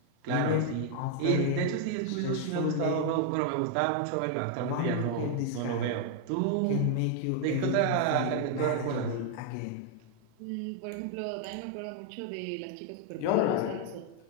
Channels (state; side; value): different; both; correlation 0.00